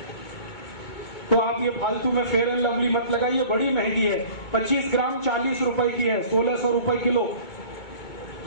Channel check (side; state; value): right; late; 2.2 ms